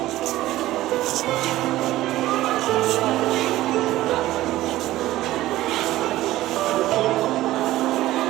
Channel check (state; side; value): quieter; left; 15.7 dB